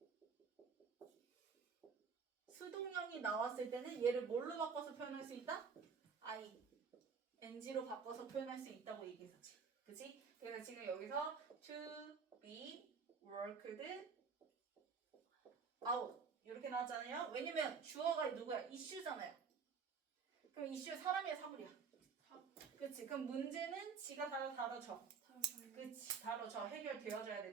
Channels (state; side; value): quieter; left; 5.8 dB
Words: 수동형이 나왔을 때는 얘를 뭘로 바꿔서 표현할 수 있다? ing로 바꿔서 표현할 수 있다고 얘기했었지. 그치? 그래서 지금 여기서 to be worked out 이렇게 나왔잖아요. 왜냐면 주어가 누구야? 이슈잖아요. 그럼 이슈 사람이야 사물이야? 그치? 그럼 문제는 지가 다뤄져. 그치? 다뤄져. 해결되어져야